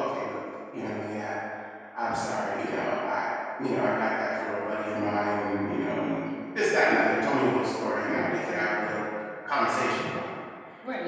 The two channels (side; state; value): both; identical; correlation 1.00